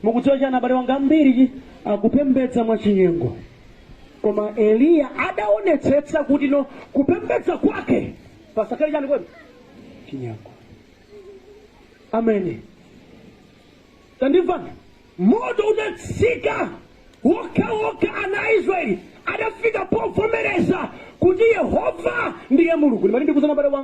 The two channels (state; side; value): identical; both; correlation 1.00